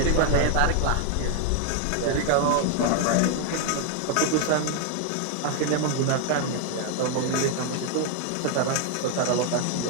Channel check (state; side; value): different; both; correlation 0.01